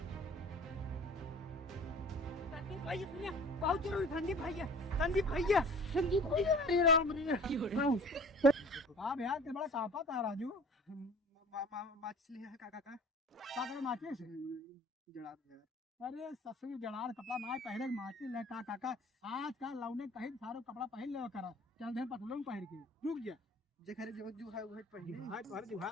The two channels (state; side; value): normal; both; correlation 0.46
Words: सुनिए, बहुत जरूरी संदीप भैया अरे राम रे हाँ भैया ते बड़ा कापा था राजू। माचिस लिया है काका का का माचिस जड़ा यार। अरे ससुर जड़ार कपड़ा ना पहने के माचिस ले का काका आज का लौने कहीं सारो कपड़ा पहन ले करा चल दे पतलून पहन के रुक जा जेखरे जो जुहा उहे पहने हां तोहर